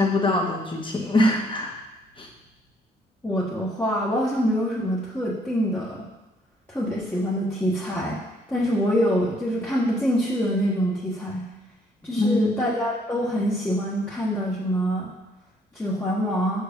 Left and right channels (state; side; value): normal; both; correlation 0.67